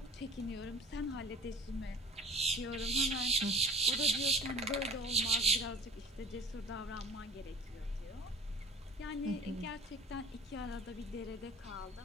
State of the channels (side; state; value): both; normal; correlation 0.44